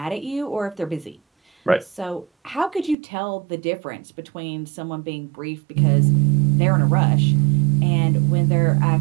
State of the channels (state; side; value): drops out; left; at 3.0 s